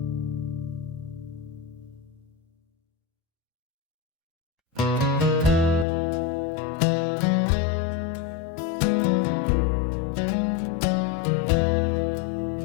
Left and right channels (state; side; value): drops out; right; at 5.9 s